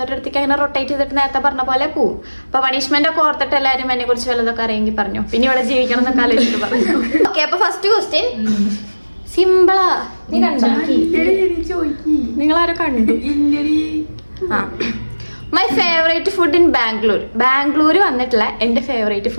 അടുത്തേക്ക് അങ്ങനെ റൊട്ടേറ്റ് ചെയ്തിട്ട് നേരത്തെ പറഞ്ഞ പോലെ പോവും. അപ്പൊ പണിഷ്മെന്റ് ഒക്കെ ഓർത്തിട്ട് എല്ലാവരും എന്നെ കുറിച്ച് വല്ലതൊക്കെ അറിയെങ്കിൽ പറഞ്ഞു. പിന്നെ ഇവിടെ ജീവിക്കണം എന്നൊക്കെ ആലോചിച്ചിട്ട് പറഞ്ഞു. ഓക്കെ, അപ്പൊ ഫസ്റ്റ് ക്വസ്റ്റ്യൻ സിമ്പിളാ. നീ കണ്ടോ? നിങ്ങളാരോ കണ്ടു? My favourite food in Bangalore വന്നിട്ടുള്ള എന്റെ ഫേവറേറ്റ്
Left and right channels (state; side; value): inverted; both; correlation -1.00